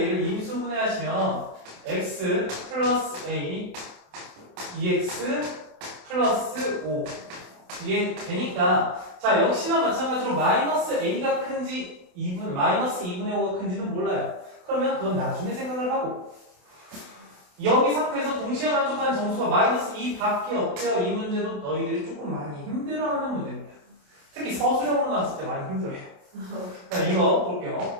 임수분해 하시면 x 플러스 a 2x 플러스 5 이게 되니까 자, 역시나 마찬가지로 마이너스 a가 큰지 마이너스 2분의 5가 큰지는 몰라요. 그러면 그건 나중에 생각을 하고 여기 상태에서 동시에 만족하는 정수가 마이너스 2밖에 없대요. 이 문제도 너희들이 조금 많이 힘들어하는 문제입니다. 특히 서술형으로 나왔을 때 많이 힘들어해요. 자, 이거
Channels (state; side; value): late; left; 28 ms